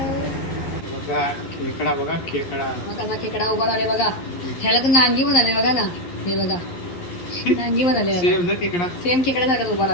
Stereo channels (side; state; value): right; late; 11 ms